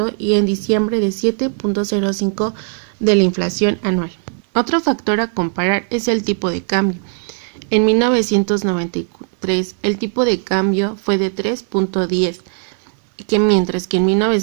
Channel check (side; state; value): left; silent; digital silence